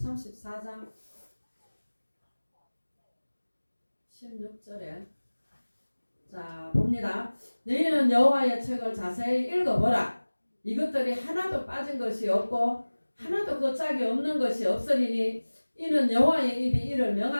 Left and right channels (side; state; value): both; inverted; correlation -1.00